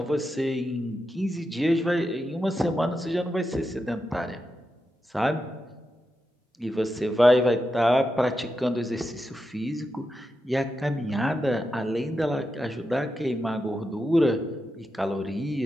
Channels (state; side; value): normal; both; correlation 0.87